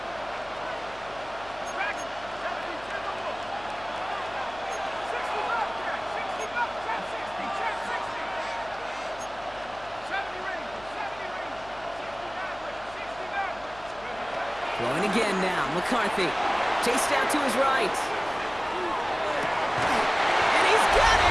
Throwing again now, McCarthy. Chased out to his right. And he's got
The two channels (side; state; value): left; noise; hum, 21 dB below the sound